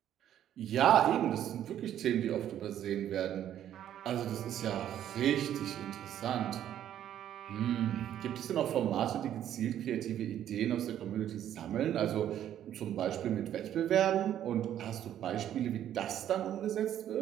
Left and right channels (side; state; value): left; quieter; 10.9 dB